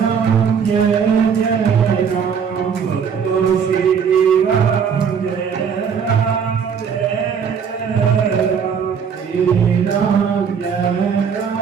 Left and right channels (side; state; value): left; quieter; 6.9 dB